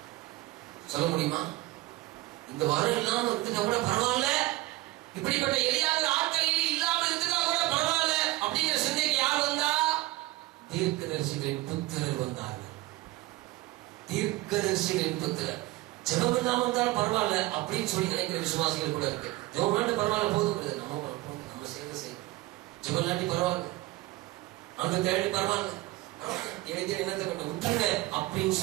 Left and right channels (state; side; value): quieter; left; 18.7 dB